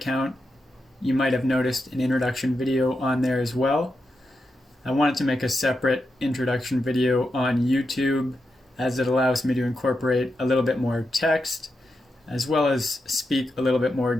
you might have noticed an introduction video on there as well. I wanted to make a separate introduction video on YouTube as it allows me to incorporate a little bit more text as well as speak a little bit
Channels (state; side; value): normal; both; correlation 0.86